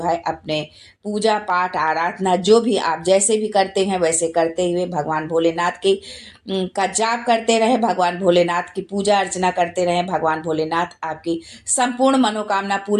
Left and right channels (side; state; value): both; identical; correlation 1.00